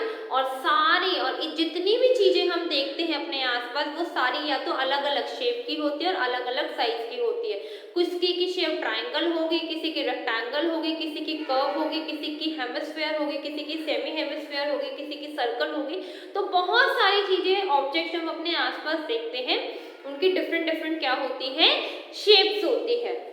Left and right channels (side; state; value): both; identical; correlation 1.00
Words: और सारी, और जितनी भी चीजें हम देखते हैं अपने आसपास वो सारी या तो अलग अलग शेप की होती है और अलग अलग साइज की होती है। किसी की शेप ट्रायंगल होगी, किसी की रेक्टेंगल होगी, किसी की कर्व होगी, किसी की हेमिस्फीयर होगी, किसी की सेमी हेमिस्फीयर होगी, किसी की सर्कल होगी। तो बहुत सारी चीजें, ऑब्जेक्ट हम अपने आसपास देखते हैं, उनकी डिफरेंट डिफरेंट क्या होती है? शेप्स होती है।